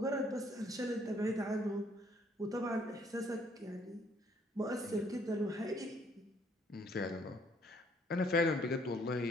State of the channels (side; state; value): both; normal; correlation 0.64